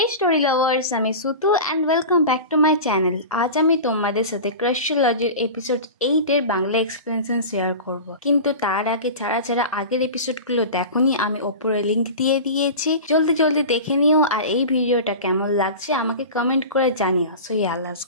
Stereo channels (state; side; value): inverted; both; correlation -0.31